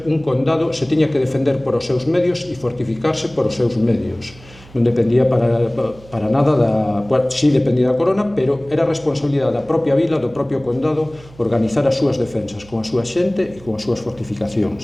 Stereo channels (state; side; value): noise; right; hum, 22 dB below the sound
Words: un condado, se tiña que defender por os seus medios e fortificarse por os seus medios. Non dependía para nada sí dependía da corona, pero era responsabilidade da propia vila, do propio condado, organizar as súas defensas con a súa xente e con as súas